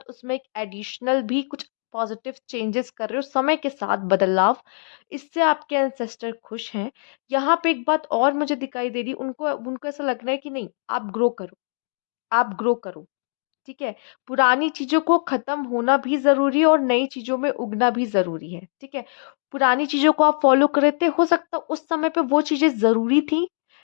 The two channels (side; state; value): right; silent; digital silence